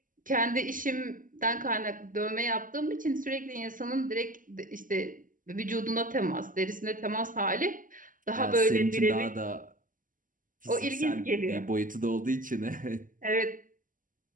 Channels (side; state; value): left; late; 0.39 ms